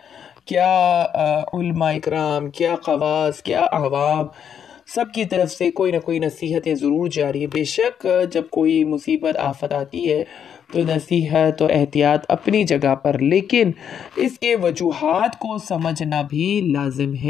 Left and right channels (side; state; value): right; quieter; 8.3 dB